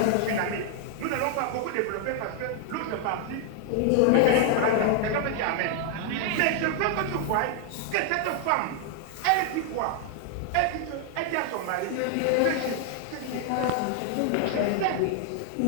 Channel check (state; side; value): different; both; correlation 0.00